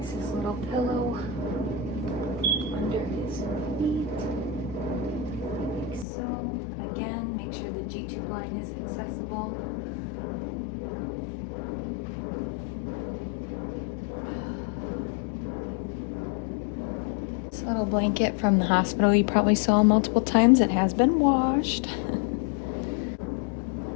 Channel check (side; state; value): right; drops out; at 6.1 s